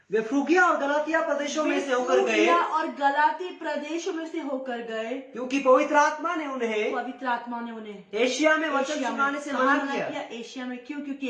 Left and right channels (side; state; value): both; identical; correlation 1.00